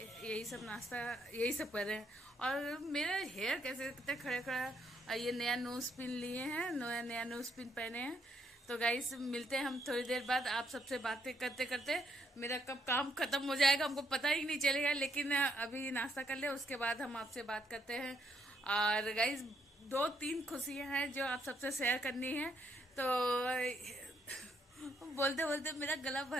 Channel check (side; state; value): both; normal; correlation 0.73